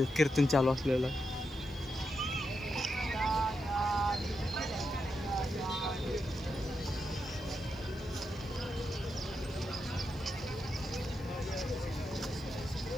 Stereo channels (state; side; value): noise; left; hiss, 27 dB below the sound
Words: कीर्तन चालू असलेलं.